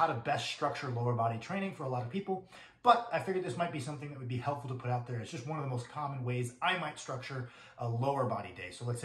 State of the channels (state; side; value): identical; both; correlation 1.00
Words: to best structure lower body training for a lot of people. But I figured this might be something that would be helpful to put out there. It's just one of the most common ways I might structure a lower body day. So let's